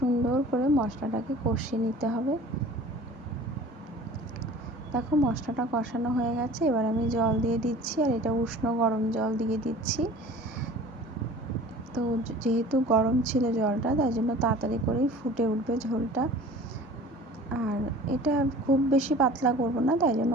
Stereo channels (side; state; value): both; normal; correlation 0.44